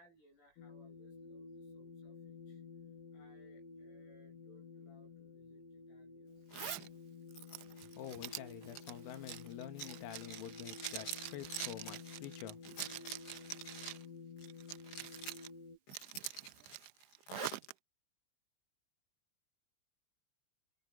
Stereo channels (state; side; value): late; right; 21 ms